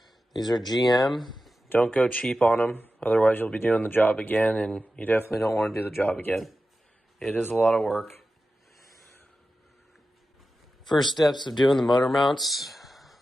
These are GM. Don't go cheap on them, otherwise you'll be doing the job again, and you definitely don't want to do the job again. It is a lot of work. First steps of doing the motor mounts,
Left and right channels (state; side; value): normal; both; correlation 0.93